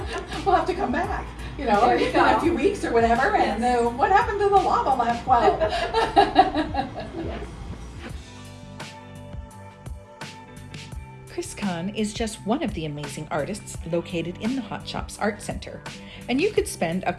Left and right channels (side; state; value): both; identical; correlation 1.00